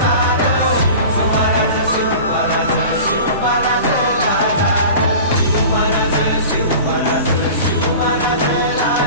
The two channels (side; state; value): both; inverted; correlation -0.38